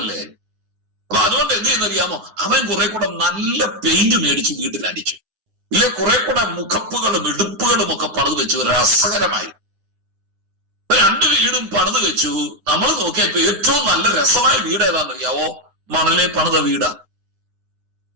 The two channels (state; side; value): late; left; 10 ms